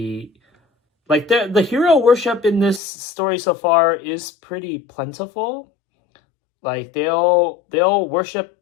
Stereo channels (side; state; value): right; drops out; at 2.8 s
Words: like the hero worship in this story so far is pretty plentiful. Like they'll worship,